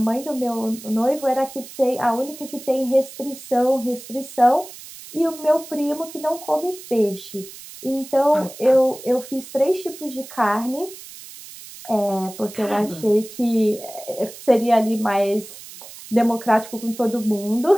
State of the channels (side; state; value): right; noise; hiss, 16 dB below the sound